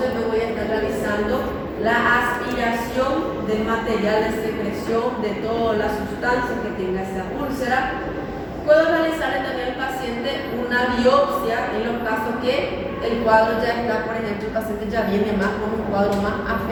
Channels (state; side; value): identical; both; correlation 1.00